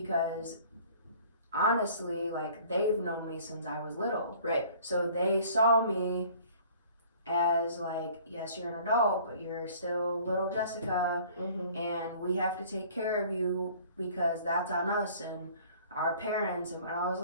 honestly, like, they've known me since I was little. Right. So they saw me as like, yes, you're an adult, but you're still little Jessica, and we have to take care of you because that's on us and our parents. And I was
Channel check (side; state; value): both; inverted; correlation -0.52